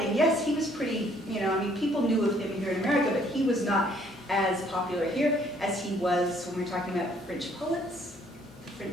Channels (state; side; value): normal; both; correlation 0.63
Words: yes, he was pretty, people knew of him here in America, but he was not as popular here as he was when we're talking about French poets, the